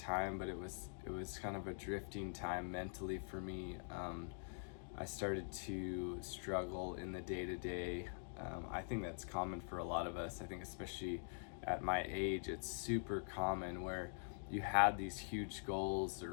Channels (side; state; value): right; silent; digital silence